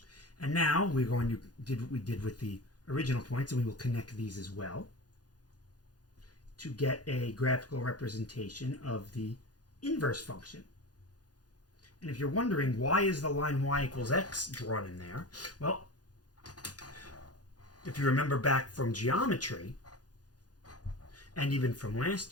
And now we're going to do what we did with the original points, and we will connect these as well to get a graphical representation of the inverse function. And if you're wondering, why is the line y equals x drawn in there? Well, if you remember back from geometry, and even from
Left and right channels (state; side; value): late; right; 0.69 ms